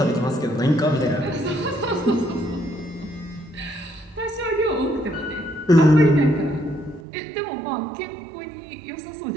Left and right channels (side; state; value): left; drops out; at 7.0 s